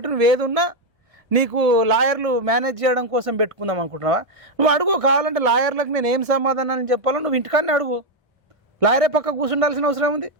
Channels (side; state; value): both; normal; correlation 0.03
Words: నువ్వు ఏదున్నా నీకు లాయర్లు మేనేజ్ చేయడం కోసం పెట్టుకుందాం అనుకుంటున్నావా, నువ్వు అడుగు, కావాలంటే లాయర్లకు నేను ఏం సమాధానం చెప్పాలో నువ్వు ఇంటికాన్నే అడుగు, లాయరే పక్క కూర్చుండాల్సిన అవసరం ఉంది,